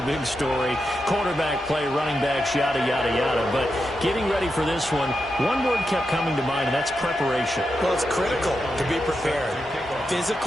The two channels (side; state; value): both; normal; correlation 0.87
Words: big story. Quarterback play, running backs, yada, yada, yada. But getting ready for this one word kept coming to mind, and that's preparation. Well, it's critical to be prepared.